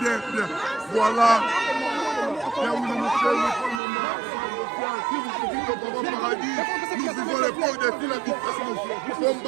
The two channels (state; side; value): drops out; left; at 3.8 s